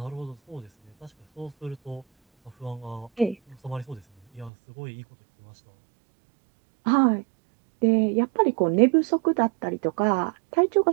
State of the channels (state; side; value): drops out; left; at 4.5 s